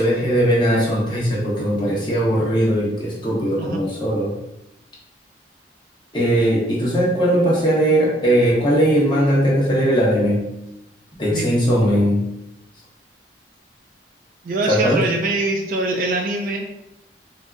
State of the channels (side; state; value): both; normal; correlation 0.63